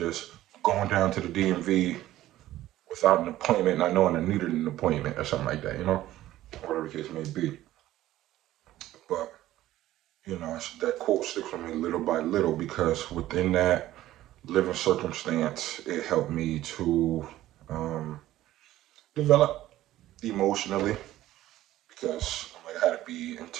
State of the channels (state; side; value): quieter; left; 14.6 dB